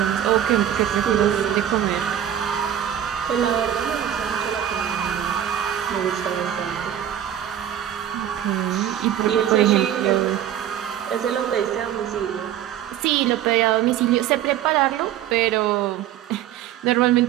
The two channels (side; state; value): left; quieter; 10.7 dB